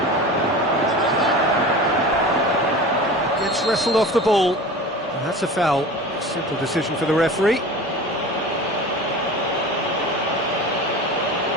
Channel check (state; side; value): normal; both; correlation 0.35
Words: Gets wrestled off the ball. And that's a foul. Simple decision for the referee.